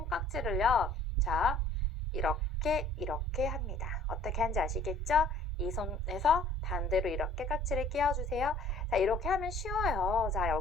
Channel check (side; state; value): both; normal; correlation 0.53